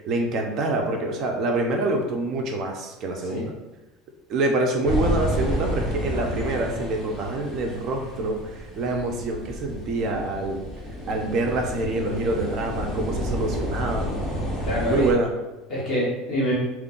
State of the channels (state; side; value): normal; both; correlation 0.36